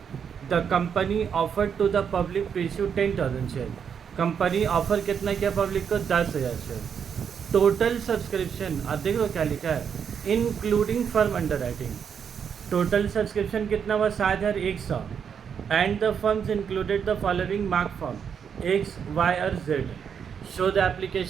The company offer to the public to issue 10,000 share. Company offer कितना किया public को, 10,000 share. Total subscription, अब देख लो क्या लिखा है, including firm underwriting. Total subscription कितना हुआ, 7,100। And the firms included the following mark form X, Y और Z. Show the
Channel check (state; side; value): quieter; left; 7.3 dB